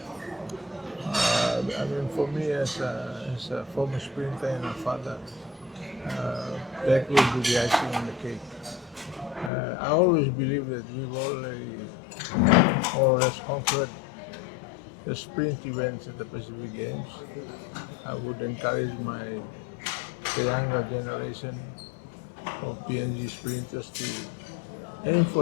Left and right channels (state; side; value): drops out; right; at 9.5 s